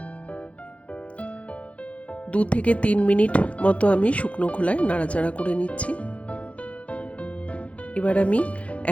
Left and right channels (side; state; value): right; late; 0.063 ms